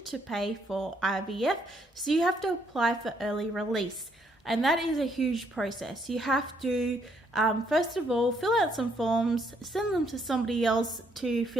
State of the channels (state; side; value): normal; both; correlation 0.71